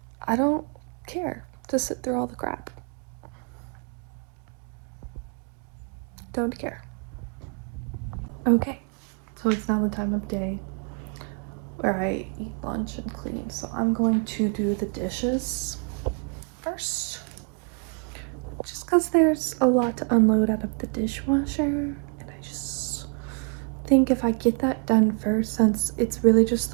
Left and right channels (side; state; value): left; quieter; 35.3 dB